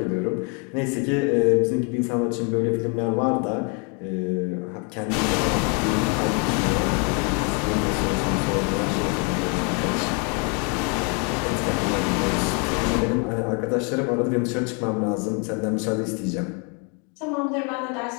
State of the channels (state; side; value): quieter; right; 35.8 dB